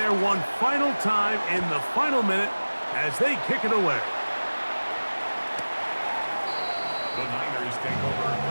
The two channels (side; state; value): both; inverted; correlation -1.00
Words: one final time in the final minute as they kick it away. The Niners take over